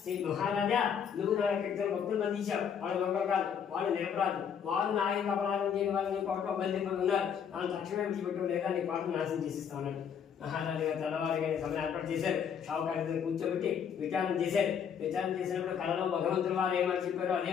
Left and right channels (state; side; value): quieter; right; 7.7 dB